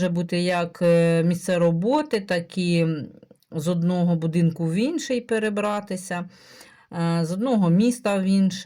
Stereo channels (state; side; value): identical; both; correlation 1.00